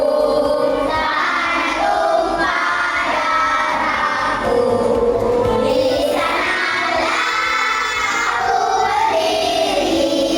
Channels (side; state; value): both; identical; correlation 1.00